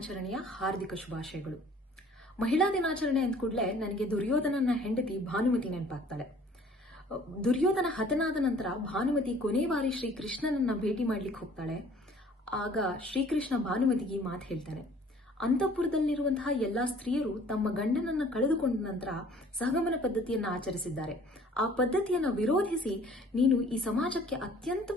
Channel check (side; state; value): both; normal; correlation 0.53